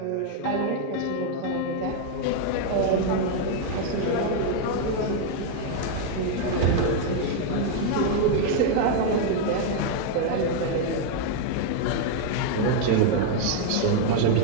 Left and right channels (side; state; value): both; different; correlation 0.00